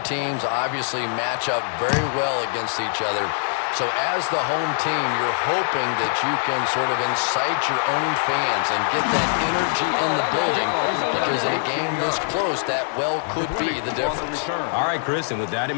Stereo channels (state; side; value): silent; right; digital silence